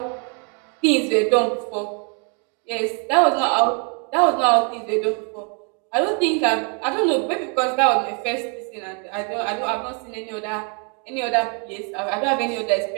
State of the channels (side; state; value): left; quieter; 36.8 dB